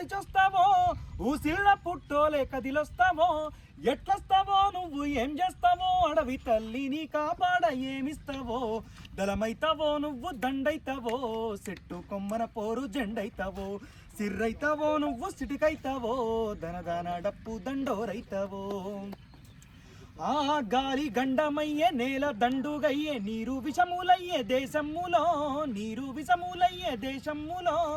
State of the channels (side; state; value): both; identical; correlation 1.00